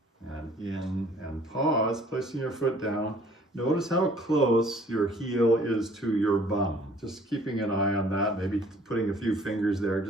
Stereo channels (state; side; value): normal; both; correlation 0.56